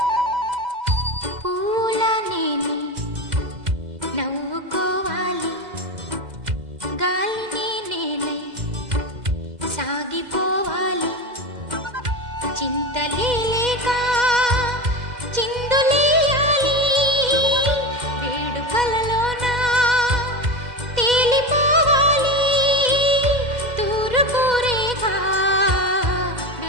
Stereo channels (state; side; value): late; left; 2.0 ms